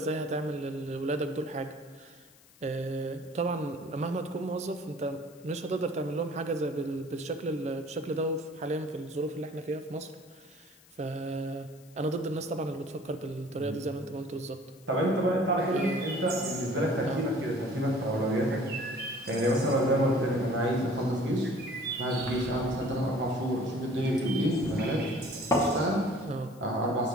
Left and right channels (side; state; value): left; noise; hiss, 27 dB below the sound